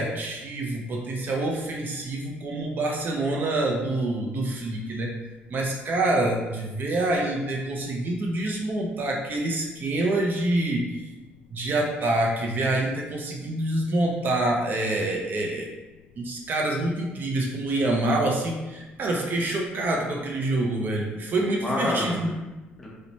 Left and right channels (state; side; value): noise; left; rumble, 28 dB below the sound